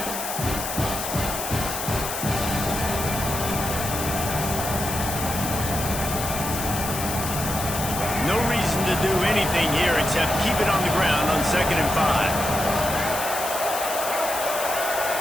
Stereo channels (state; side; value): noise; left; hiss, 5 dB below the sound